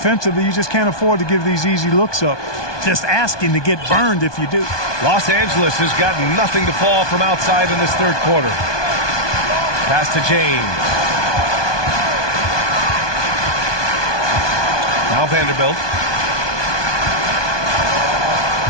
you just can't afford to give these easy looks up. Just asking to get burned if you do. Los Angeles has got nothing to fall from outside in this third quarter. Pass to James. Now Vanderbilt.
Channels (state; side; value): late; right; 1.2 ms